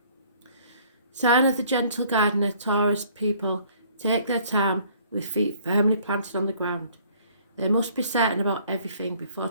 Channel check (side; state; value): both; inverted; correlation -0.58